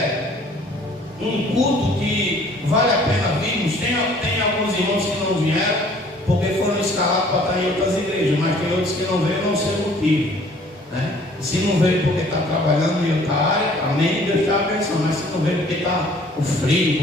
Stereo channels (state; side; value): normal; both; correlation 0.55